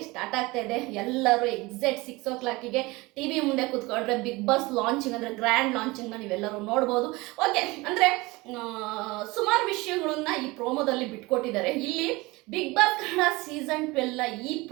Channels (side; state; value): left; quieter; 22.6 dB